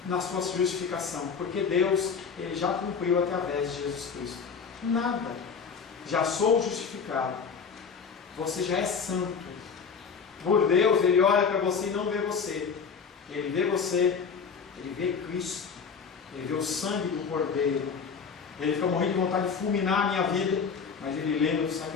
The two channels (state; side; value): quieter; right; 5.9 dB